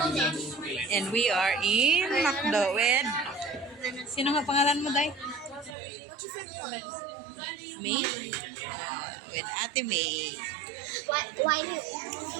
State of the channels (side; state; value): left; drops out; at 5.8 s